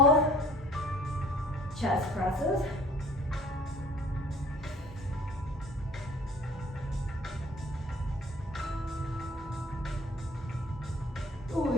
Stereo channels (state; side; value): normal; both; correlation 0.52